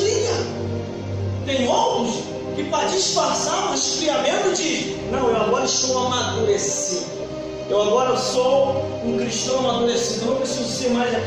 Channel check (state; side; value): identical; both; correlation 1.00